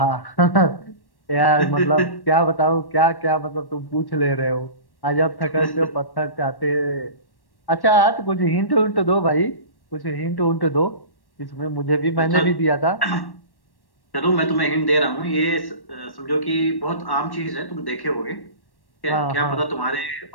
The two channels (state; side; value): late; right; 1.1 ms